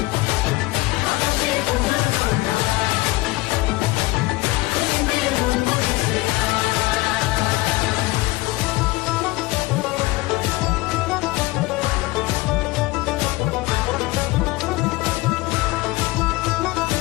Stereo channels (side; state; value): right; quieter; 20.9 dB